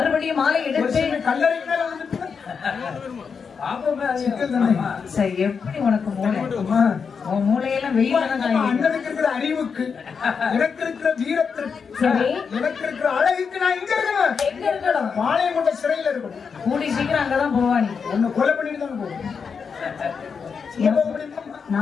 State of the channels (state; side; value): quieter; right; 5.9 dB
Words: மாலை எடுத்து கல்லறை எப்படி உனக்கு மூளை உன் மூளையெல்லாம் அண்ணனுக்கு இருக்கிற அறிவுக்கு எனக்கு இருக்கிற வீரத்திற்கு எனக்கு இருக்கிற அழகுக்கு நான் எங்க இருக்கணும்? பாளையம் கொண்ட சிறையில இருக்கணும். கூடி சீக்கிரம் அங்கதான் போவானி உன்னை கொலை பண்ணிட்டு தான் போவோம்.